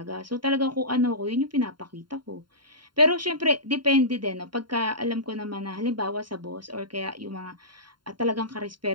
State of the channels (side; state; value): left; late; 0.72 ms